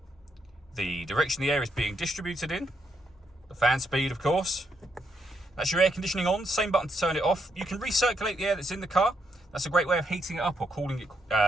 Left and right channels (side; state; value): both; normal; correlation 0.78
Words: the direction the air is being distributed in, the fan speed, of course. That's your air conditioning on, same button to turn it off. You can recirculate the air that's in the car. That's a great way of heating it up or cooling it